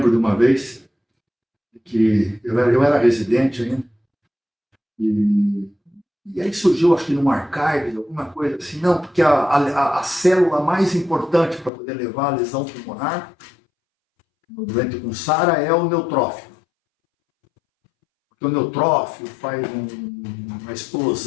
de uma vez que eu era residente ainda, e aí surgiu, acho que num archive, alguma coisa assim, não, porque a célula mais importante para poder levar a lesão pulmonar no doente com SARA é o neutrófilo. Porque o neutrófilo faz uma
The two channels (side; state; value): right; drops out; at 11.7 s